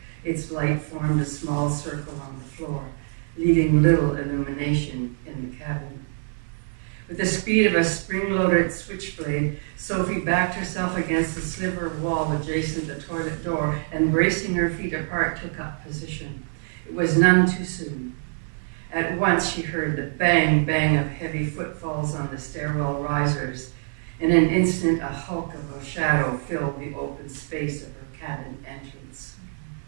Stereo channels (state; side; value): silent; left; digital silence